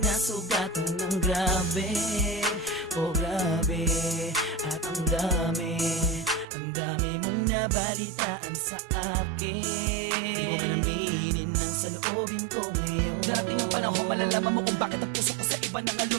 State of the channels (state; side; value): drops out; left; at 6.5 s